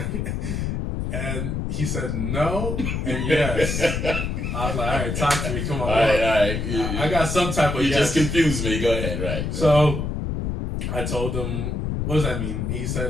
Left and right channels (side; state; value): left; noise; rumble, 2 dB below the sound